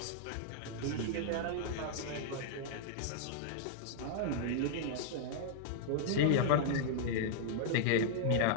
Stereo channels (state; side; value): different; both; correlation -0.01